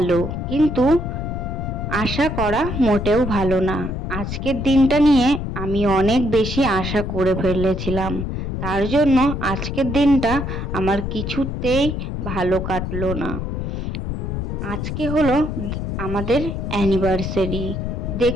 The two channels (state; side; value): noise; left; rumble, 4 dB below the sound